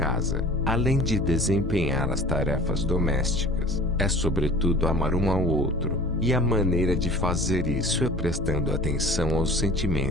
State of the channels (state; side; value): normal; both; correlation 0.44